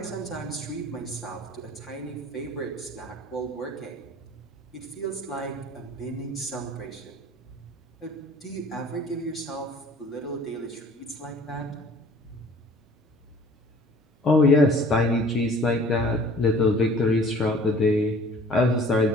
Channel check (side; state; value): both; normal; correlation 0.50